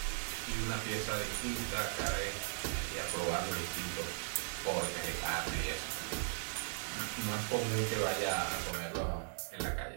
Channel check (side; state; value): left; silent; 52 dB below the other